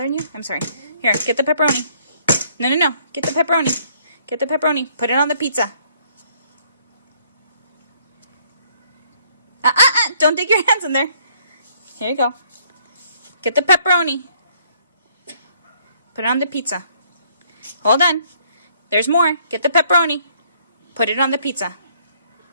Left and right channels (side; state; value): both; inverted; correlation -0.64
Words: you? I'm sorry. Here, get the pepperoni. No. Get the pepperoni. Get the pepperoni. Put it on the pizza. Don't dig your hands in there. Here you go. Get the pepperoni. Put it on the pizza. Hold on. There's more. Get the pepperoni. Put it on the pizza.